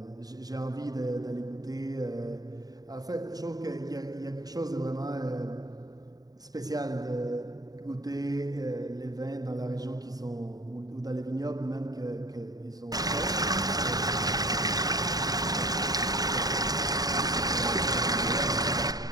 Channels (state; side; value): late; left; 0.18 ms